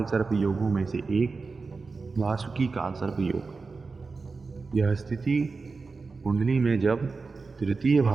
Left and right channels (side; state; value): left; quieter; 4.3 dB